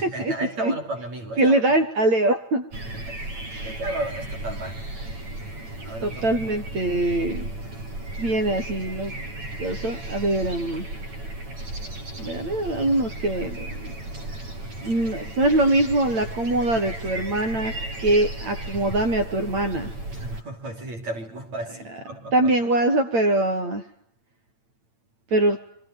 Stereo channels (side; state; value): left; late; 8.8 ms